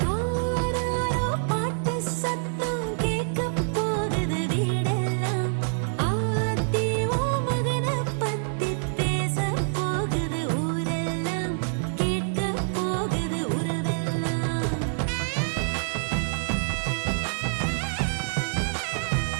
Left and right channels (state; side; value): silent; left; 61 dB below the other